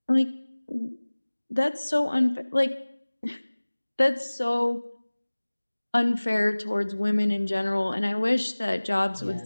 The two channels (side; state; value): both; inverted; correlation -1.00